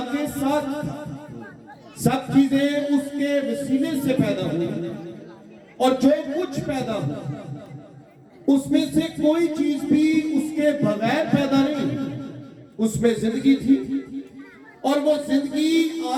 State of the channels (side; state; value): both; identical; correlation 1.00